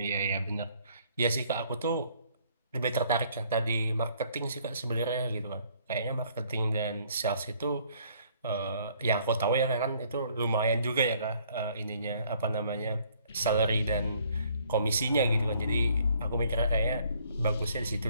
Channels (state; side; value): inverted; both; correlation -0.63